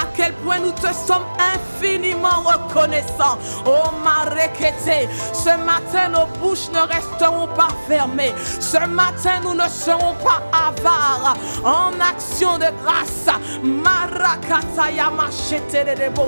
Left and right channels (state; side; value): inverted; both; correlation -1.00